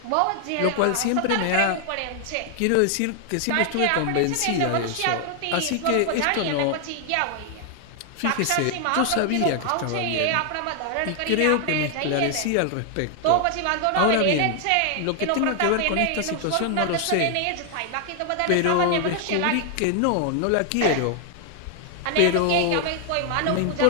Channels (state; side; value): different; both; correlation 0.00